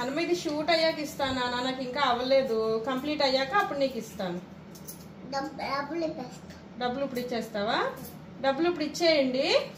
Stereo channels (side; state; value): both; identical; correlation 1.00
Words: ఇది షూట్ అయ్యాక ఇస్తానా నాకు ఇంకా అవ్వలేదు కంప్లీట్ అయ్యాక అప్పుడు నీకు ఇస్తాను డబ్బులు ఇప్పుడు ఇచ్చేస్తావా డబ్బులు ఇప్పుడు ఇచ్చేయండి